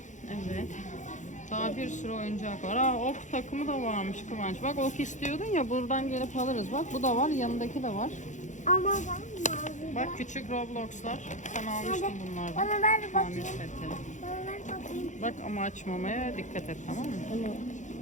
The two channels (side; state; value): right; late; 0.35 ms